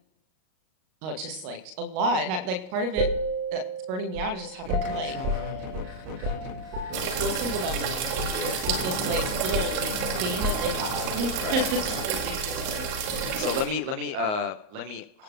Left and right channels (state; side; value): late; left; 38 ms